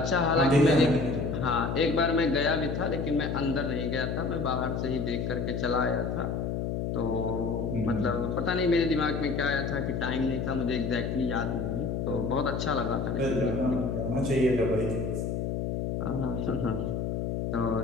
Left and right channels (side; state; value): left; noise; hum, 1 dB below the sound